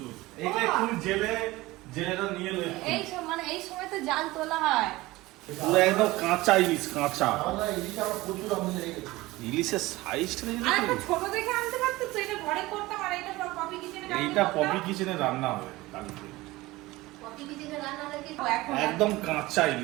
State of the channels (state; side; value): quieter; left; 19.6 dB